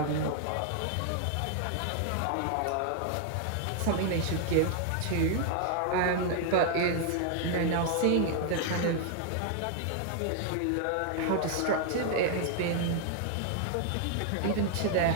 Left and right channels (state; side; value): different; both; correlation 0.00